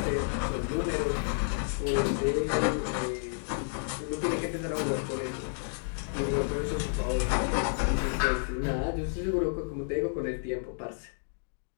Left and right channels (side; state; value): right; silent; digital silence